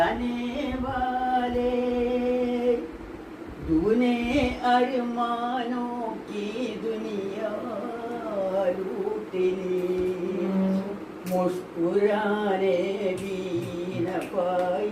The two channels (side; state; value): both; identical; correlation 1.00